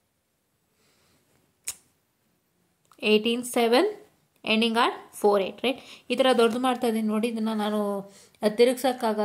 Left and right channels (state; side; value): identical; both; correlation 1.00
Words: 18/7 ending at 4/8, right? ಈ ಥರ ದೊಡ್ಡದು ಮಾಡ್ತಾ ಇದ್ದೀನಿ ನೋಡಿ. ಇದನ್ನು ನಾನು